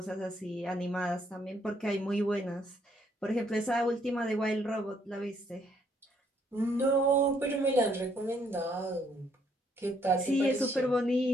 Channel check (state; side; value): normal; both; correlation 0.69